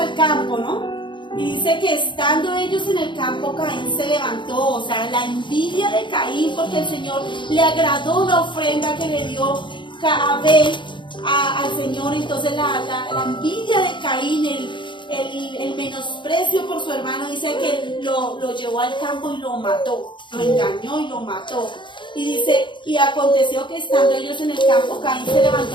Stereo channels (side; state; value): right; late; 0.23 ms